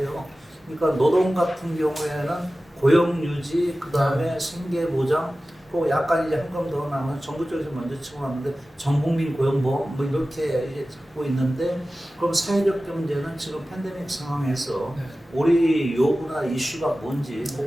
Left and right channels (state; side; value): normal; both; correlation 0.95